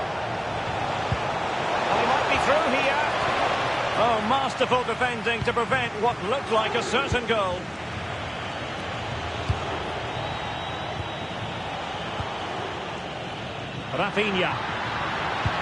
Oh, masterful defending to prevent what looked like a certain goal. Rafinha.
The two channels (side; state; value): both; identical; correlation 1.00